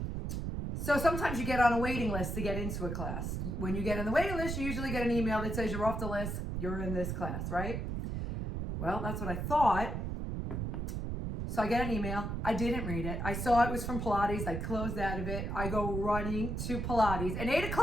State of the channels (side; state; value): right; noise; rumble, 3 dB below the sound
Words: So sometimes you get on a waiting list to get into a class. When you get on the waiting list, you usually get an email that says you're off the list, you're in this class, right? Well, that's what I thought. So I get an email. I didn't read it. I saw it was from Pilates. I closed out of it. I go running to Pilates. An 8